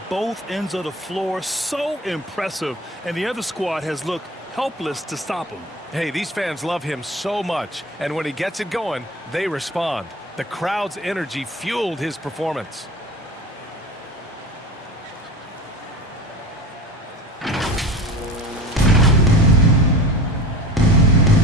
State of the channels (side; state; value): both; normal; correlation 0.35